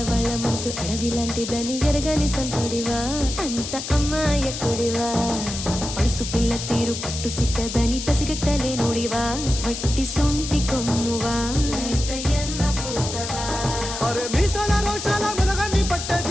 మనసు అడవి లాంటిదని ఎరగని సంటుడివా, అంత అమ్మాయకుడివా. పడుసు పిల్ల తీరు పట్టు సిక్కదని పసిగట్టలేనుడివా, వట్టి సొంటి కొమ్మువా, లేతయ్యన్న పూసవా. అరే మీసాల రోషాల మెలగాన్ని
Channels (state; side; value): noise; left; hiss, 7 dB below the sound